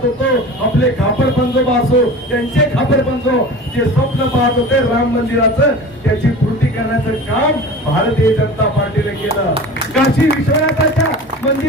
होतो, आपले खापर पंजोबा असो, त्यांचे खापर पंजो जे स्वप्न पाहत होते राम मंदिराचं, त्याची पूर्ती करण्याचं काम भारतीय जनता पार्टीने केलं. काशी विश्वनाथाच्या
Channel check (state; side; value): normal; both; correlation 0.36